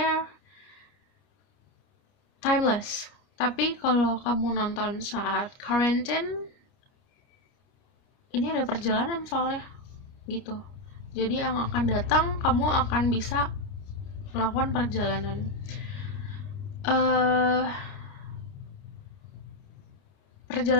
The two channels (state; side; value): late; right; 29 ms